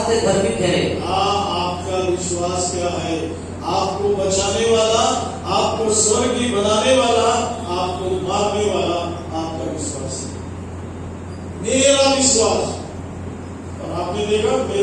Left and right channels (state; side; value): identical; both; correlation 1.00